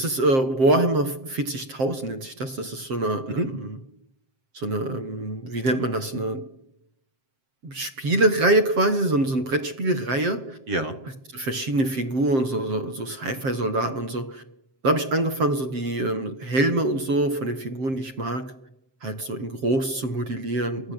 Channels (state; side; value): late; left; 7.6 ms